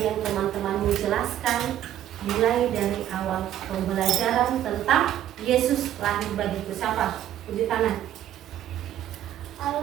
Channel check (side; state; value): left; quieter; 11.7 dB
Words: yang teman-temanmu jelaskan, mulai dari awal pembelajaran tentang Yesus lahir bagiku? Siapa? Tunjuk tangan.